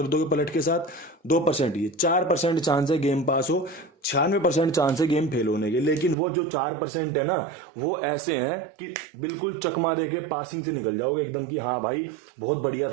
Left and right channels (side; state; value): left; drops out; at 6.2 s